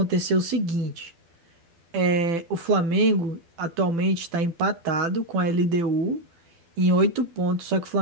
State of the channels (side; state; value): left; late; 12 ms